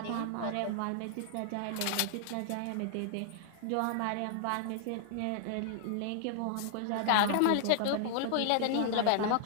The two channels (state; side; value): different; both; correlation -0.01